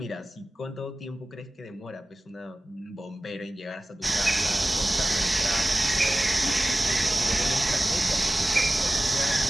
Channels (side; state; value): both; normal; correlation 0.97